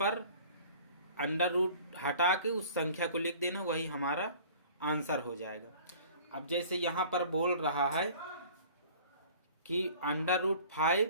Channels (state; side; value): inverted; both; correlation -0.47